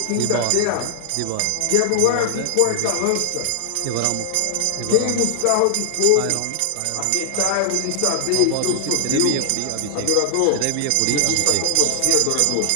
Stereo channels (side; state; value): both; different; correlation 0.00